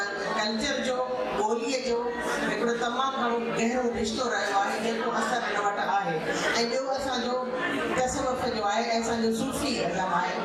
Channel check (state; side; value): identical; both; correlation 1.00